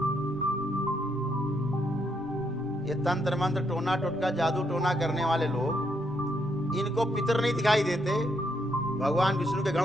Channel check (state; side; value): normal; both; correlation 0.76